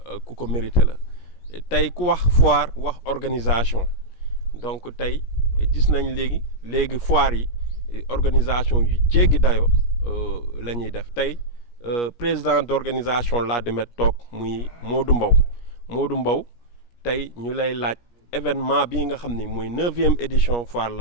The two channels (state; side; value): late; right; 17 ms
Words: ku ko mérité la tey ku wax foire wax organisation donc tey gis nañ léegi foire yi organisation yu jéggi dayo la ñuy def tey président d'organisation Ladoumène toog muy Modou Mbow tey ñu lay laaj événement bii nga xam ni mooy 9e édition foire